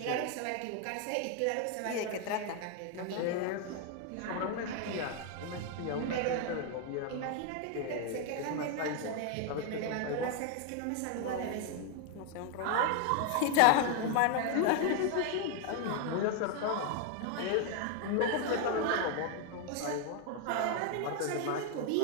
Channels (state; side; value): different; both; correlation 0.00